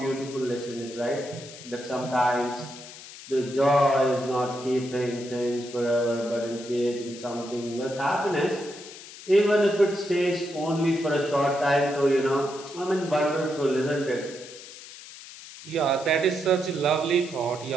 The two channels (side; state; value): left; noise; hiss, 16 dB below the sound